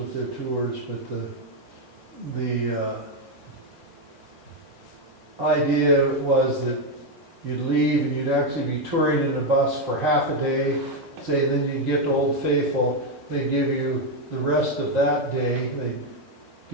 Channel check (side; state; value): both; normal; correlation 0.04